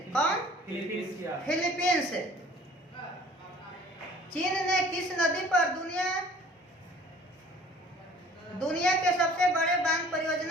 कौन? फिलीपींस। चीन ने किस नदी पर दुनिया के सबसे बड़े बांध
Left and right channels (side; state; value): both; normal; correlation 0.51